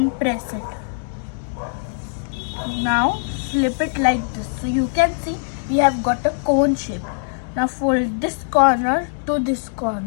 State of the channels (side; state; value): right; silent; digital silence